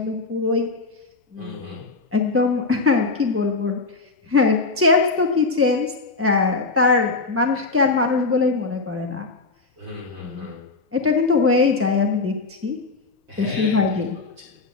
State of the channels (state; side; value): quieter; right; 3.8 dB